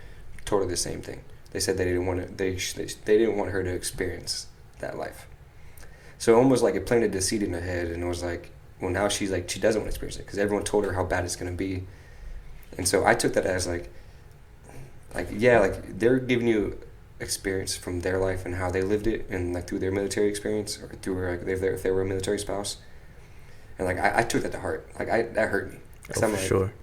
told her the same thing. They said they didn't want to, they didn't want her to experience that life. So almost like it planted the seed in her head, and it was like, well, now she's like, she doesn't want to experience it because everyone told her how bad it's gonna be. And so I took that as like yeah, like they're giving you experience from their life and how they lived it, and like through their military experience or through like if they were a military spouse, and like I took that to heart. Like that hurt me because I'm for like sure.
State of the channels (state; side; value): identical; both; correlation 1.00